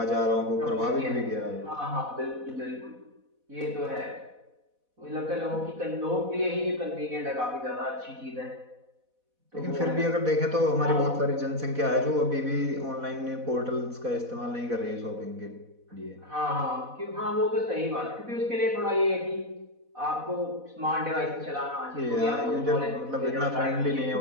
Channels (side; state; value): left; late; 4.1 ms